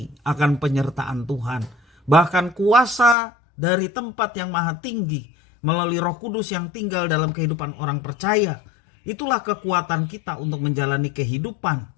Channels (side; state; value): right; drops out; at 3.2 s